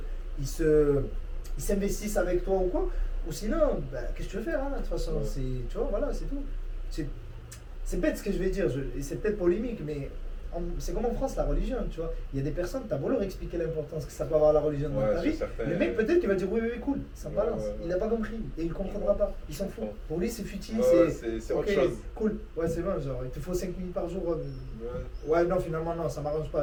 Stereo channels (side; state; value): both; identical; correlation 1.00